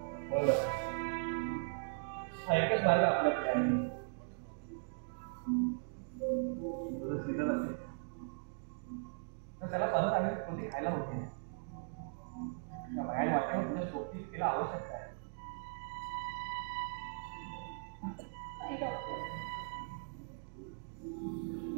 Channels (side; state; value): left; silent; digital silence